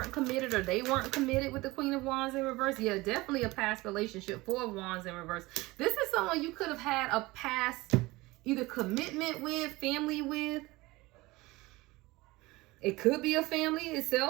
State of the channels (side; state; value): left; quieter; 21.0 dB